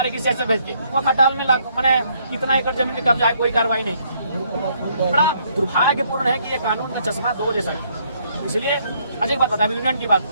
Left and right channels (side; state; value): both; inverted; correlation -0.68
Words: CSF भेज के वो खटाल में मैंने कितना एकड़ जमीन में कब्जा है, कोई कार्रवाई नहीं। बड़ा दुर्भाग्यपूर्ण है कि ये कानून का चश्मा 2 जैसा है। इसलिए अजय बात बता, यूनियन की बात